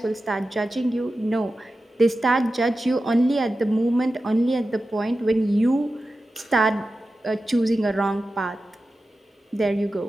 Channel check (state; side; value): normal; both; correlation 0.93